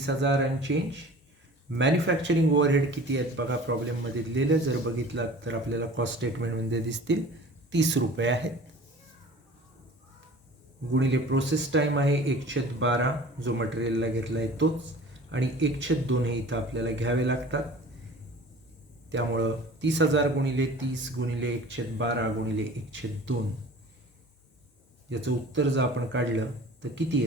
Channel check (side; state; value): both; normal; correlation 0.43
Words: आणि चेंज. मॅन्युफॅक्चरिंग ओव्हरहेड किती आहेत बघा प्रॉब्लेममध्ये दिलेलं. जर बघितलात तर आपल्याला कॉस्ट स्टेटमेंटमध्ये दिसतील 30 रुपये आहेत. गुणिले प्रोसेस टाईम आहे 1/12 जो मटेरियलला घेतला आहे तोच, आणि 1/2 हे इथं आपल्याला घ्यावे लागतात. त्यामुळं 30,000 गुणिले 30 गुणिले 1/12 गुणिले 1/2 याचं उत्तर जर आपण काढलं तर किती